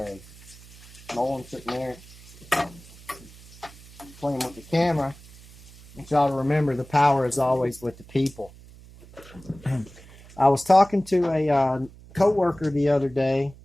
Nolan's sitting there playing with the camera. I want y'all to remember the power is always with the people. I was talking to a co-worker the other day.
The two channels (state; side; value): noise; right; hum, 21 dB below the sound